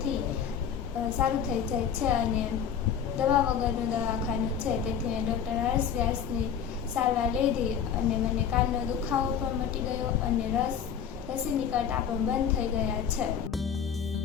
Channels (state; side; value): quieter; right; 8.0 dB